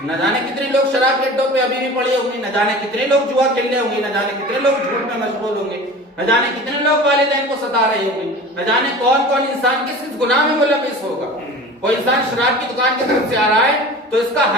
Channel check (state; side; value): normal; both; correlation 0.38